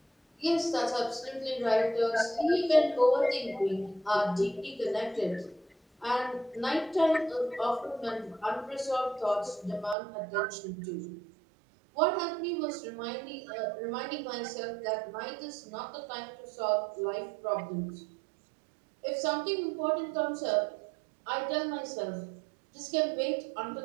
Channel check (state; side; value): drops out; left; at 10.0 s